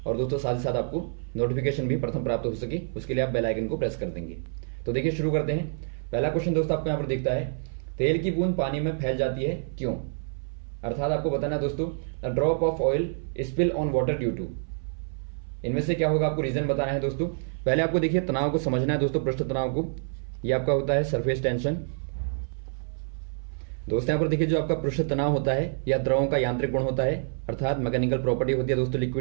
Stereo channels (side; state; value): left; silent; 58 dB below the other